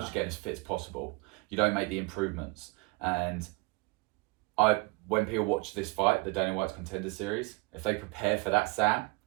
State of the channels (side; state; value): left; quieter; 26.1 dB